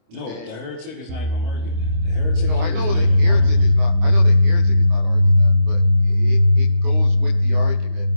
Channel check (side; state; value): left; late; 26 ms